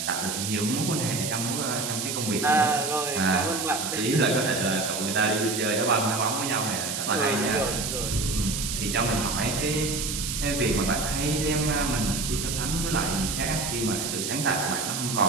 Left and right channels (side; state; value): right; noise; hiss, 3 dB below the sound